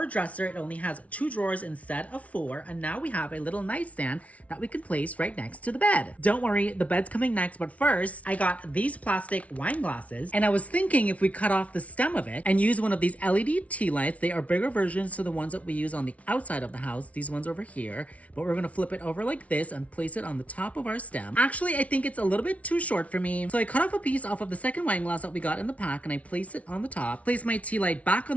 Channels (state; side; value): late; right; 0.066 ms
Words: dresser. It only has 2 drawers instead of 4. And now we have a little nightstand that we can place right next to the bed. Don't worry, the bed's coming next. But first, I got these plastic wine glasses. And I was thinking if we cut off the stem of it and use one of these LED tea lights, they are bigger versions to the ones that we use on the outside of the house, these ones over here, but we're gonna flip it over like this and place it on the top of our stem. Actually, I think it's a little bit too short for me, so I cut off a piece off of the second wine glass that we got in the pack and I place it on the top, place my tea light back on